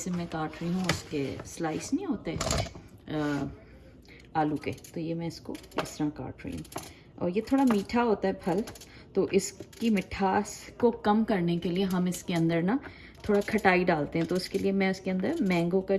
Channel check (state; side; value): identical; both; correlation 1.00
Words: मैं काट रही हूँ उसके स्लाइस नहीं होते आलू के। तो ये मैं इसको इस तरह काट रही हूँ। और ये थोड़ा मीठा होता है फल, तो इसकी मिठास को कम करने के लिए हम इसके अंदर ना थोड़ा खटाई डालते हैं। तो उसके लिए मैं इसके अंदर मैंगो का